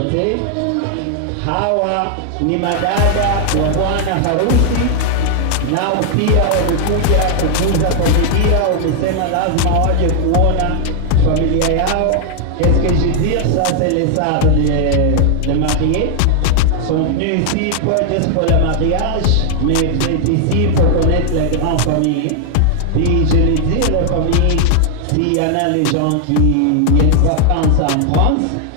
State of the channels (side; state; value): both; different; correlation 0.00